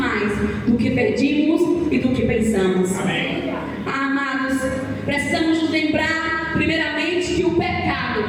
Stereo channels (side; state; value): both; identical; correlation 1.00